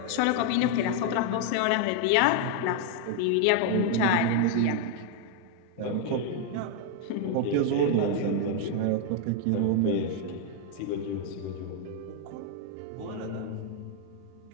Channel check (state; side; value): different; both; correlation 0.00